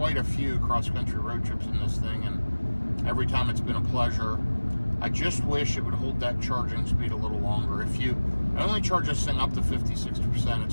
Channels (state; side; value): inverted; both; correlation -1.00